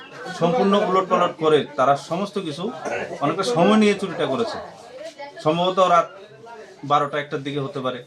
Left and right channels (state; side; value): identical; both; correlation 1.00